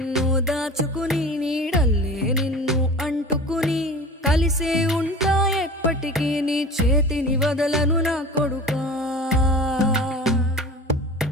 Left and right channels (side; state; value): both; normal; correlation 0.36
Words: దాచుకుని నీడల్లే నిన్ను అంటుకుని కలిసే ఉంటా ఎప్పటికీ నీ చేతిని వదలను నా కొడుకా